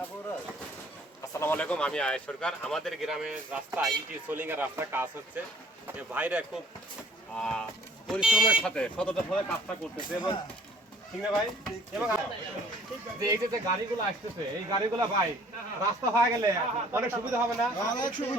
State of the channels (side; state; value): both; normal; correlation 0.55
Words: আসসালামু আলাইকুম, আমি আয়েশ সরকার। আমাদের গ্রামের রাস্তা ইটি সোলিং এর রাস্তা কাজ হচ্ছে। যে ভাইরা খুব পরিশ্রমের সাথে সততার সাথে কাজটা করতেছে এবং ঠিক না ভাই? এবং যে এই যে গাড়িগুলো আসতেছে, এই গাড়িগুলো ভাই রাস্তা হয়ে গেলে অনেক সুবিধা হবে না? অনেক